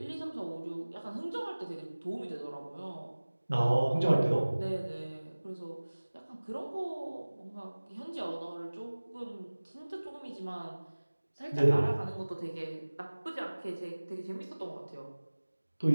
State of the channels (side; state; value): both; inverted; correlation -1.00